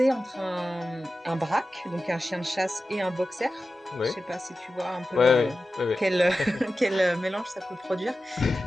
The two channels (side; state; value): both; normal; correlation 0.93